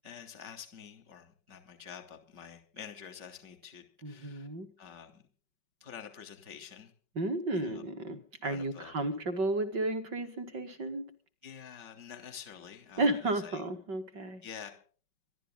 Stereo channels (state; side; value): late; left; 5.3 ms